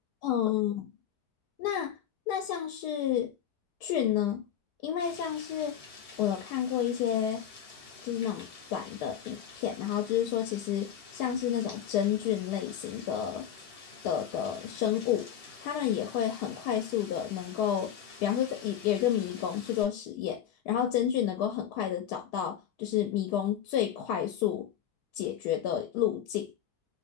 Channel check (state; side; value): quieter; right; 9.9 dB